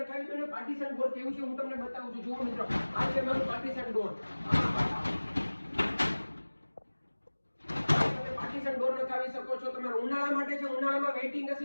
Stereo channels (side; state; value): both; inverted; correlation -1.00